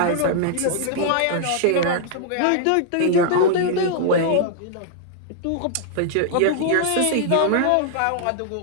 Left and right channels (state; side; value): different; both; correlation -0.01